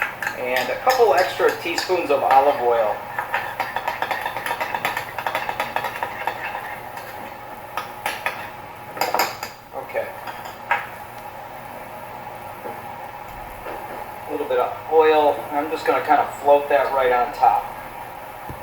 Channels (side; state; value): both; identical; correlation 1.00